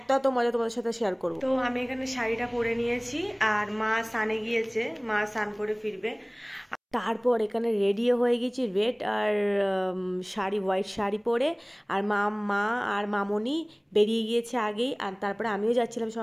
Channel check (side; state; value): both; identical; correlation 1.00